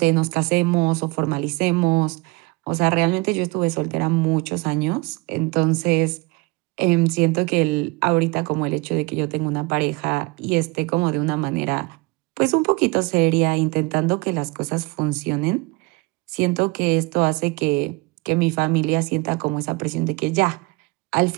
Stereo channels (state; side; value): quieter; left; 25.7 dB